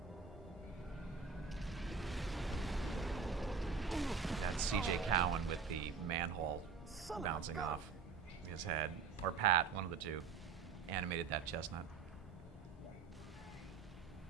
That's CJ Cowan with the manhole bouncing off his head. Or Pat, one of the two, animated that chestnut.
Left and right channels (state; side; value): quieter; left; 5.6 dB